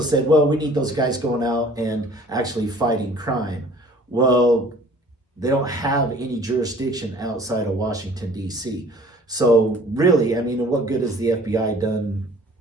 said, well, we need those guys going out and actually fighting crime. Well, they don't have any jurisdiction outside of Washington, D.C. So really, I mean, what good has the FBI done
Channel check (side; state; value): both; normal; correlation 0.51